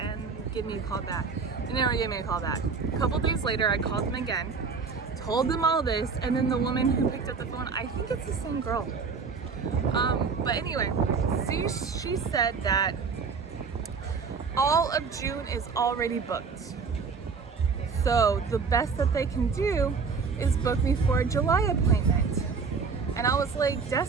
give me a call back. They never gave me a call back. A couple days later, I called them again, told them all this, and then the woman who picked up the phone, I think it's the same girl. But anyway, she said that all of June is already booked. So the best that they can do is book me for a July appointment. And I was like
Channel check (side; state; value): left; quieter; 5.2 dB